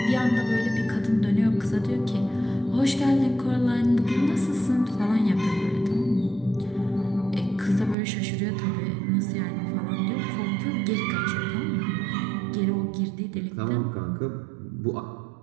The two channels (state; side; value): drops out; left; at 8.0 s